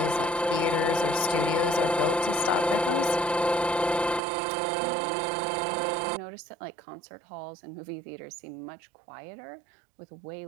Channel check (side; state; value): left; drops out; at 4.2 s